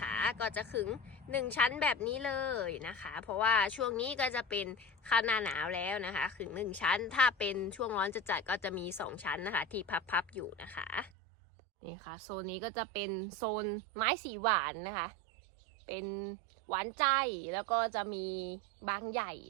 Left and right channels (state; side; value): drops out; left; at 11.1 s